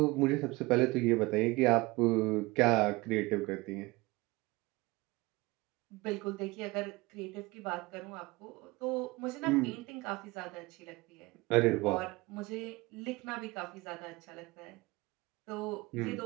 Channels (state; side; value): quieter; left; 22.6 dB